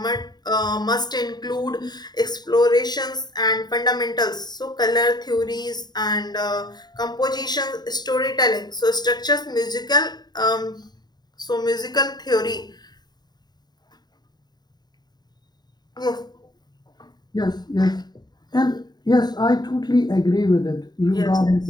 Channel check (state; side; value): late; right; 0.20 ms